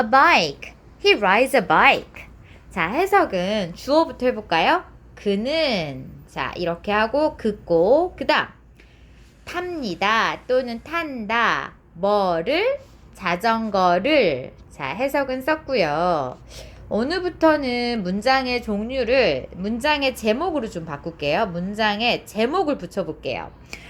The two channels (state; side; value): identical; both; correlation 1.00